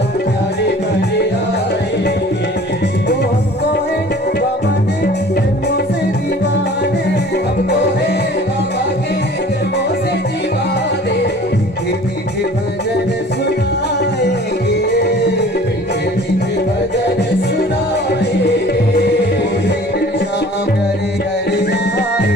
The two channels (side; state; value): both; normal; correlation 0.48